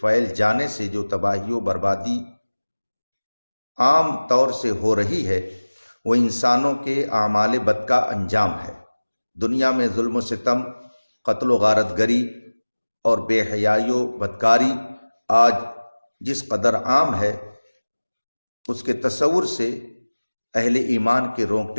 جانے سے جو تباہی و بربادی عام طور سے ہو رہی ہے، وہ انسانوں کے اعمال بد کا انجام ہے۔ دنیا میں ظلم و ستم، قتل و غارت گری اور بے حیائی و بدکاری آج جس قدر عام ہے، اس کے تصور سے اہل ایمان کے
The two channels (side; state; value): both; inverted; correlation -1.00